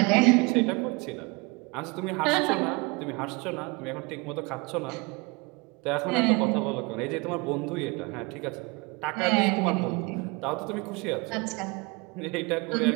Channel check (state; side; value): quieter; left; 26.9 dB